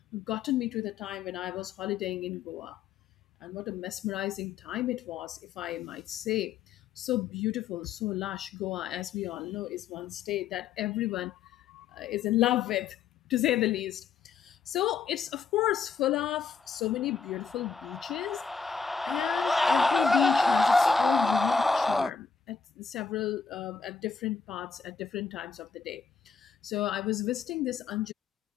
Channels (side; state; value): right; quieter; 5.8 dB